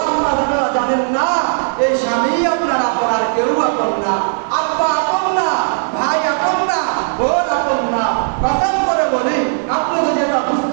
আম্মা জানেরা জানেন না এই স্বামী আপনার আপন, আর কেউ আপন না। আব্বা আপন না, ভাই আপন না, বোন আপন না। কসম করে বলি, আপনি যদি এটা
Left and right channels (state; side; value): silent; left; 65 dB below the other